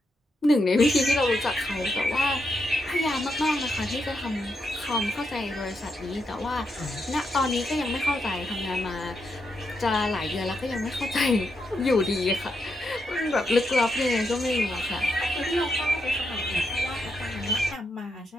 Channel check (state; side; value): normal; both; correlation 0.82